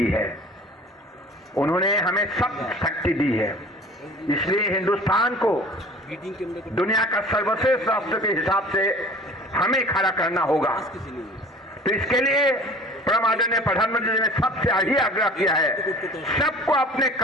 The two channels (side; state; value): both; normal; correlation 0.45